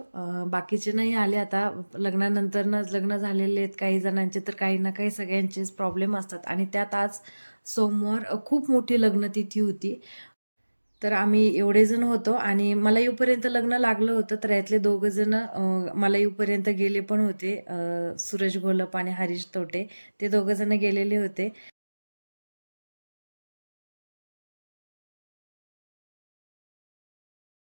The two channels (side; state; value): both; inverted; correlation -1.00